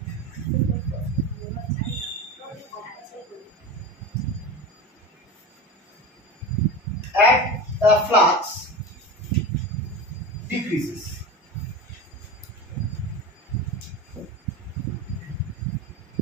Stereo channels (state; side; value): normal; both; correlation 0.27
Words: at the flux decreases.